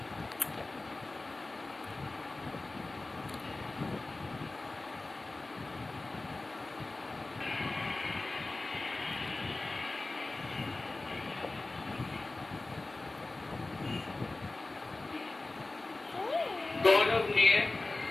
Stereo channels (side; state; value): right; quieter; 3.1 dB